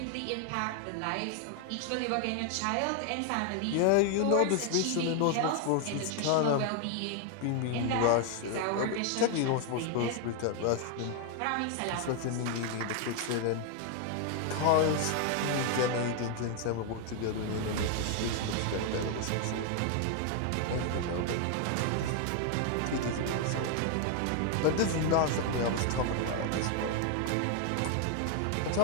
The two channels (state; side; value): different; both; correlation 0.00